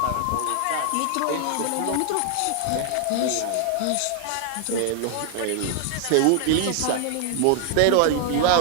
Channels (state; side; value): different; both; correlation 0.00